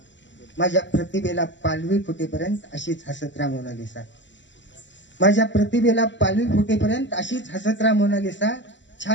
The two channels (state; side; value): late; right; 0.53 ms